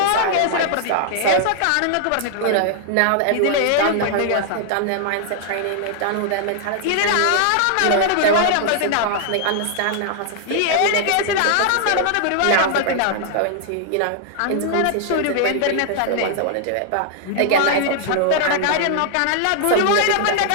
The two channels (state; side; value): different; both; correlation -0.01